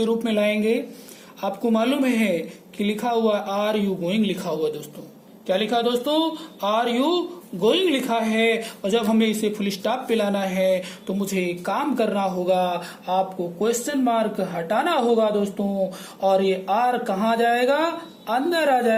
रूप में लाएंगे। आपको मालूम है कि लिखा हुआ आर यू गोइंग लिखा हुआ दोस्तों, क्या लिखा दोस्तों, आर यू गोइंग लिखा है। और जब हमें इसे फुल स्टॉप पे लाना है तो मुझे एक काम करना होगा, आपको क्वेश्चन मार्क हटाना होगा दोस्तों, और ये आर कहाँ जाएगा, अंदर आ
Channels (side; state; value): both; identical; correlation 1.00